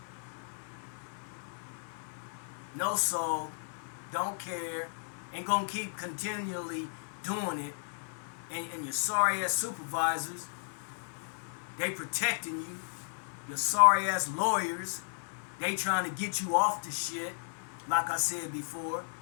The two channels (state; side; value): silent; right; digital silence